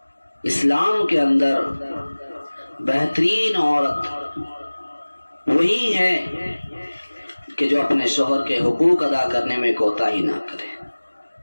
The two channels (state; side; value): inverted; both; correlation -1.00